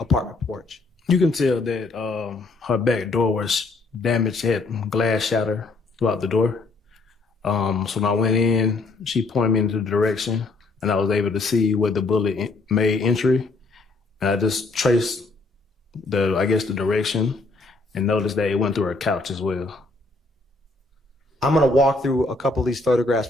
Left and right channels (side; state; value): right; quieter; 3.5 dB